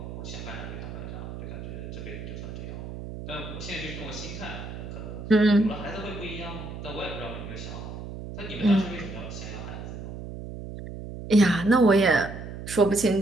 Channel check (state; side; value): noise; right; hum, 9 dB below the sound